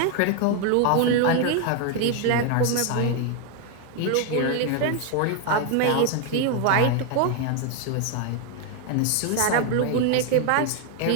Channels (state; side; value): different; both; correlation 0.01